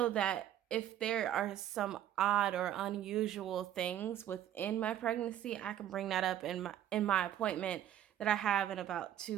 that if there are some odd or unusual things within my pregnancy, I can bring that up in my appointment that I have in about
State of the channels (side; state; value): left; quieter; 11.3 dB